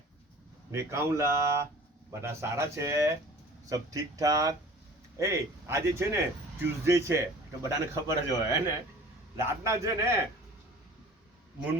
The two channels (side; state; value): both; normal; correlation 0.44